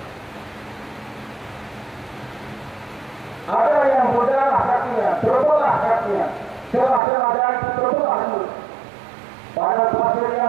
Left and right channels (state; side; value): drops out; left; at 7.0 s